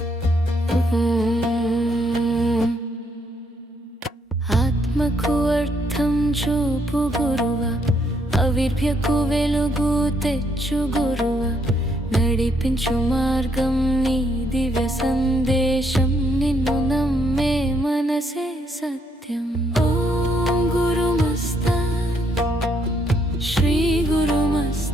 ఆత్మకు అర్థం చూపు గురువ, అవిర్భ్యకు వెలుగు తెచ్చు గురువ, నడిపించు మార్గం నీ దివ్య సందేశం, నిన్ను నమ్మే మనసే సత్యం। ఓం గురుమస్తాన్ శ్రీ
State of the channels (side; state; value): both; normal; correlation 0.73